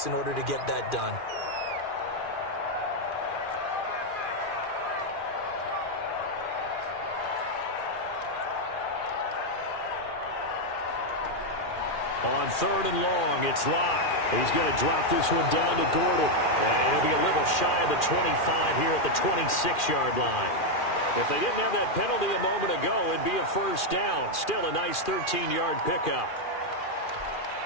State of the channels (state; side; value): late; right; 2.4 ms